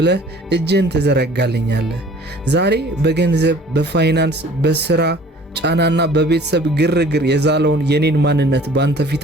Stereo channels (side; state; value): both; normal; correlation 0.50